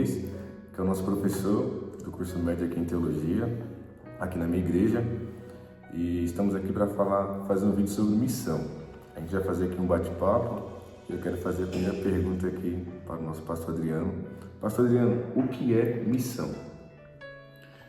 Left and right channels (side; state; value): both; identical; correlation 1.00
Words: que é o nosso professor do curso médio aqui em teologia, aqui na minha igreja. E estamos aqui para fazer um vídeo sobre missão. A gente vai fazer aqui um bate-papo. Eu quero fazer a primeira pergunta aqui para o nosso pastor Adriano. Pastor Adriano, o que é missão?